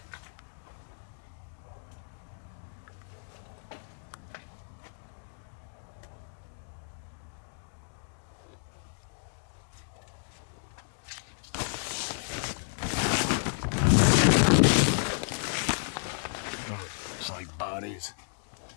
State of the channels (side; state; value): right; silent; digital silence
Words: Oh, it's like bodies.